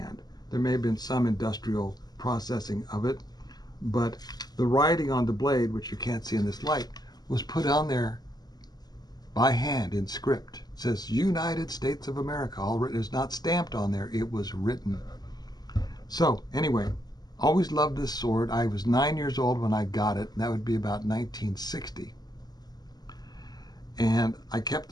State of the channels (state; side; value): late; right; 0.20 ms